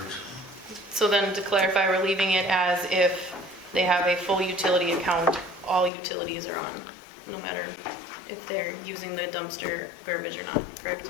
So then to clarify, we're leaving it as if they have a full utility account, all utilities are on, no matter if they're using the dumpster garbage or not, correct?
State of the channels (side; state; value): right; drops out; at 5.9 s